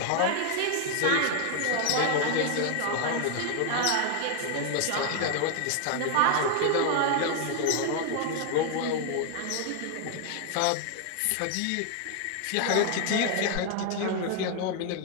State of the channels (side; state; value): both; different; correlation 0.00